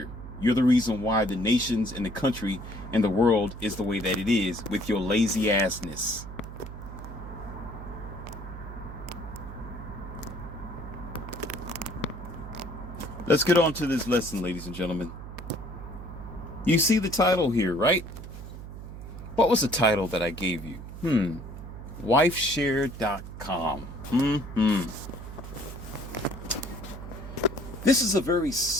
You're the reason why the nations and the country and the world is the way that it is, with your lazy assness. Let's get on to this lesson, ladies and gentlemen. You see the title here, right? What was the title that I gave you? Wifeshare.com. This is a very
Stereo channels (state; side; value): noise; right; hum, 11 dB below the sound